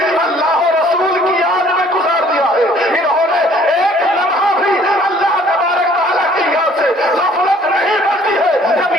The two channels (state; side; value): normal; both; correlation 0.57